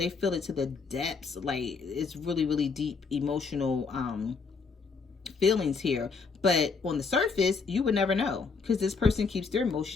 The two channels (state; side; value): quieter; right; 4.9 dB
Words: feel it to the depths. Like, it's really, really deep emotional feelings here. But on the surface, you would never know because this person keeps their